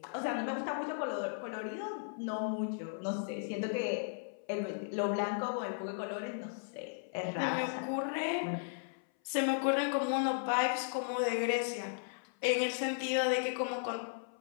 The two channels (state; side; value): silent; right; 54 dB below the other